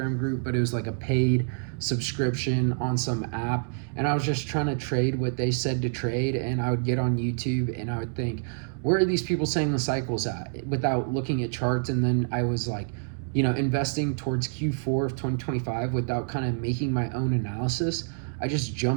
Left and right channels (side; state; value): left; silent; 60 dB below the other